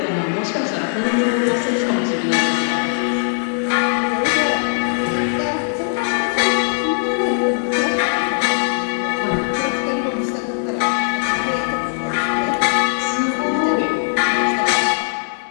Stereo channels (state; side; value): silent; right; digital silence